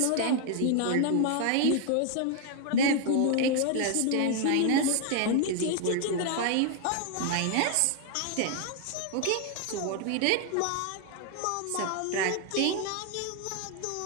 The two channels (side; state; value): both; different; correlation 0.00